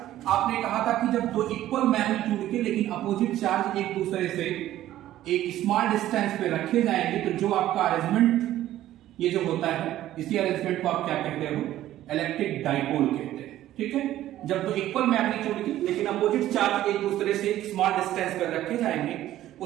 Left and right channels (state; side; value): quieter; left; 13.6 dB